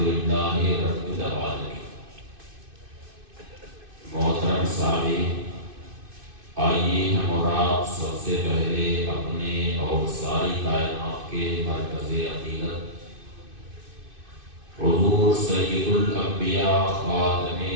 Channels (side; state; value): left; late; 2.6 ms